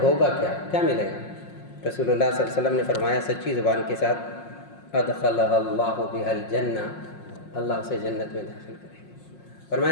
ہوگا کیا ملے گا؟ رسول اللہ صلی اللہ علیہ وسلم نے فرمایا سچی زبان کے ساتھ ادخلہ اللہ بہا الجنہ، اللہ اسے جنت میں داخل کرے گا.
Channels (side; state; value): right; late; 5.6 ms